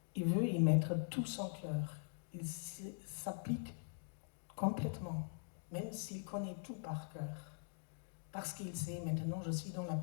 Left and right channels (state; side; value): silent; right; digital silence